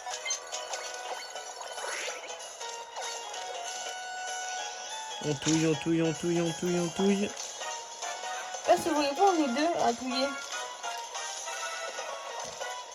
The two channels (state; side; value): identical; both; correlation 1.00